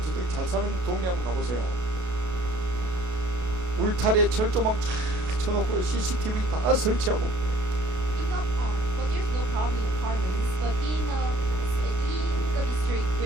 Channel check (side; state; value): left; late; 33 ms